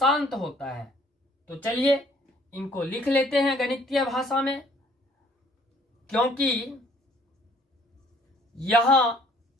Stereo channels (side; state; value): both; normal; correlation 0.59